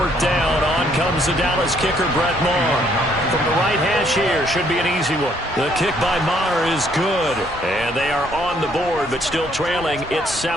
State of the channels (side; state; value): both; normal; correlation 0.67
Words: down, on comes the Dallas kicker, Brett Maher. From the right hash here, should be an easy one. The kick by Maher is good. And they are on the board, but still trailing. It's